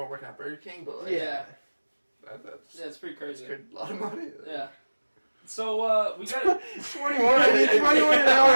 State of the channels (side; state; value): both; inverted; correlation -1.00